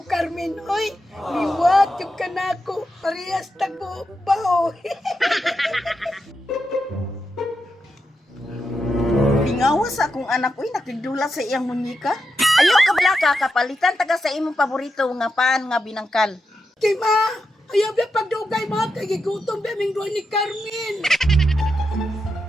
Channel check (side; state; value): both; normal; correlation 0.86